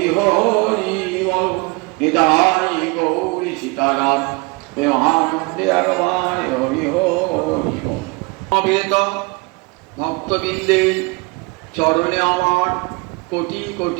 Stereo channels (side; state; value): left; quieter; 27.2 dB